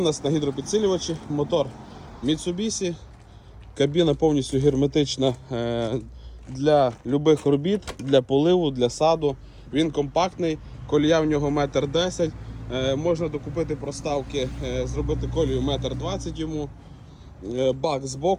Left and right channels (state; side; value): identical; both; correlation 1.00